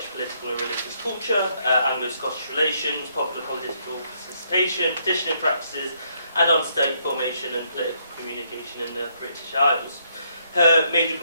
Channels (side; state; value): both; inverted; correlation -0.72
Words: political and religious culture, Anglo-Scottish relations, popular political participation, petitioning practices, and on state formation and political communication in the British Isles. Her major